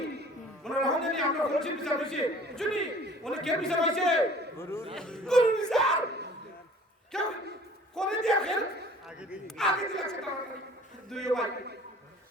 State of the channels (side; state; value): both; normal; correlation 0.49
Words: মনে রাখুন জানি আমরা বলছি বিচার হইছে বুঝুনি উনি কে বিচার হইছে গুরু বিচার কেউ করে দিয়া খেল আগে দি লাগছে দুই ভাই